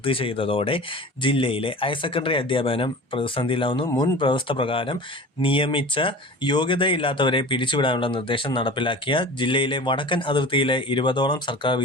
ചെയ്തതോടെ ജില്ലയിലെ ഹയർ സെക്കൻഡറി അധ്യാപനം പ്രതിസന്ധിയിലാവുന്നു. മുൻ വ്യവസ്ഥ പ്രകാരം നിയമിച്ച യോഗ്യതയില്ലാത്തവരെ പിരിച്ചുവിടാനുള്ള നിർദ്ദേശം നടപ്പിലാക്കിയ ജില്ലയിലെ വടക്കൻ അതിർത്തിയിലെ 20ഓളം സർക്കാർ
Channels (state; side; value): normal; both; correlation 0.37